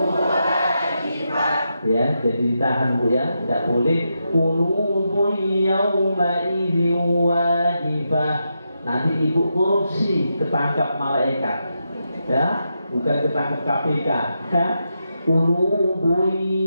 wajibah. Ya, jadi ditahan Bu ya, tidak boleh qulubun yawma idzin wajibah. Nanti ibu korupsi, ketangkap malaikat. Ya, bukan ketangkap KPK. Ya. Qulubun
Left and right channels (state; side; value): inverted; both; correlation -0.85